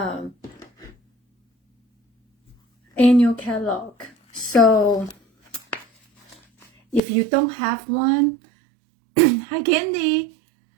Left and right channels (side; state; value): left; drops out; at 7.0 s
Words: annual catalog. So if you don't have one, hi Candy.